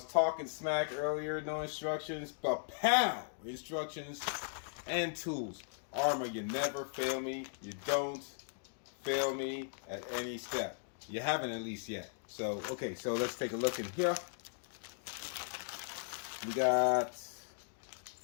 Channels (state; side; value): silent; right; digital silence